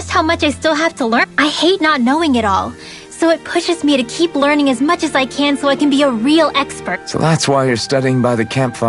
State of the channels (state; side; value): identical; both; correlation 1.00